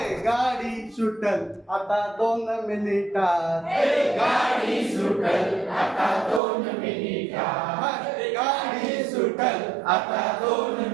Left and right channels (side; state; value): left; drops out; at 6.4 s